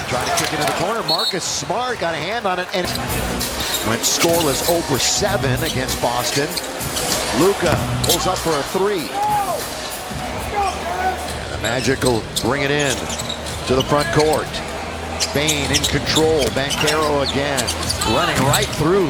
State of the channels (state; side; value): identical; both; correlation 1.00